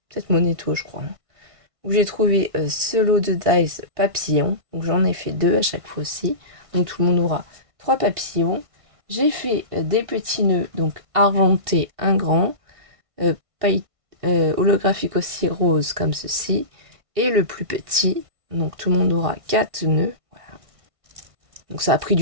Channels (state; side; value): late; left; 1.5 ms